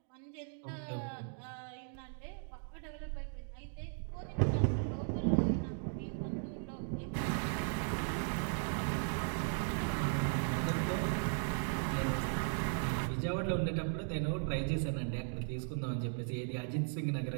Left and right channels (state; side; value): silent; left; 53 dB below the other